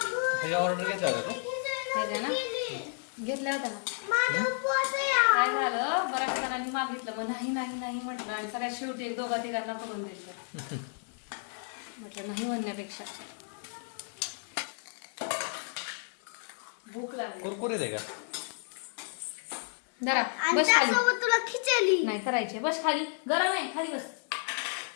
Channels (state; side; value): silent; right; 57 dB below the other